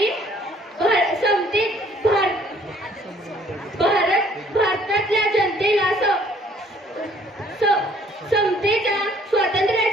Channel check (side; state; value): both; normal; correlation 0.60